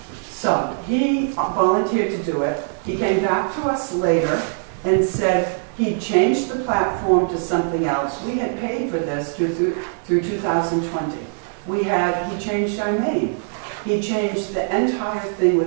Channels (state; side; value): silent; left; digital silence